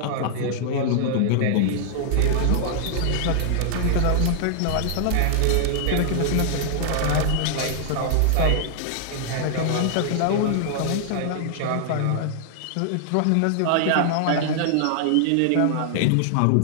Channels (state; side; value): different; both; correlation -0.01